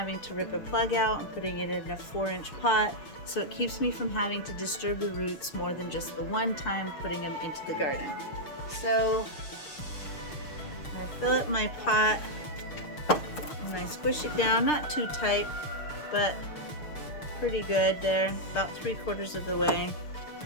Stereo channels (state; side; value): late; right; 6.6 ms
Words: to rip a plug out and putting it in a 4-inch pot, so it keeps me from having to disturb the roots more than just the one time putting them into the garden. So I'm gonna fill up my pot, and I squish it down, not too tight, but pretty good there, about 3/4 of the way.